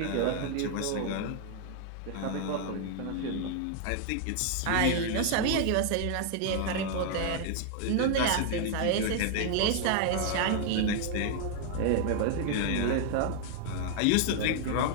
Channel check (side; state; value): both; different; correlation 0.00